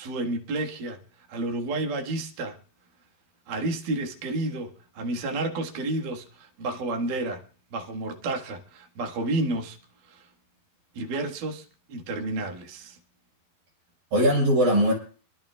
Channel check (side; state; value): left; late; 11 ms